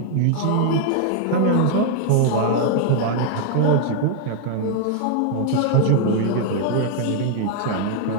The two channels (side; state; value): both; different; correlation 0.00